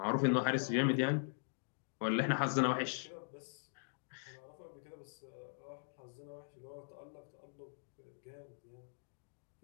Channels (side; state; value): right; silent; digital silence